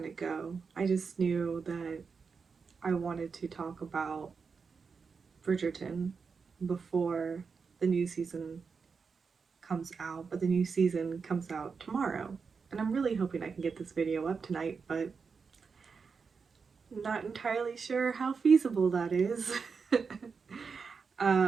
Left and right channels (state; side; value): quieter; left; 5.4 dB